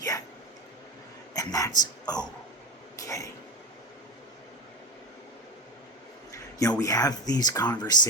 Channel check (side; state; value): both; normal; correlation 0.21